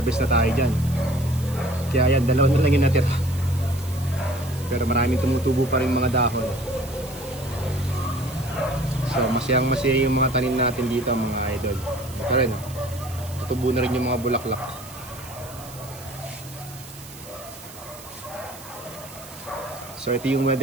na tayo dyan. Kaya yan, dalawa na lang yung natira. Pero maraming tumutubo pa rin mga dahon. So masayang masaya yung mga tanim natin dito mga idol. Ito rin, tutubo na rin yung mga bulaklak. So ito yung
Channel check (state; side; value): noise; right; hiss, 17 dB below the sound